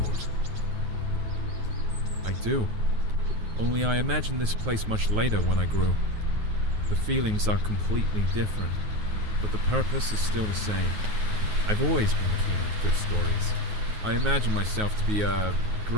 I do. Only I imagined this place much later when I grew. The feelings are completely different, but the purpose is still the same. I've always been keen on good stories. I imagine myself to be a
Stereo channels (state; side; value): late; left; 9.4 ms